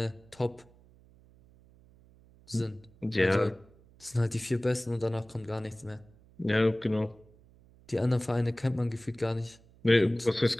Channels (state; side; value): noise; right; hum, 27 dB below the sound